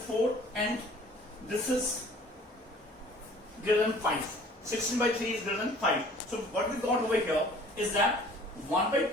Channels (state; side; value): normal; both; correlation 0.51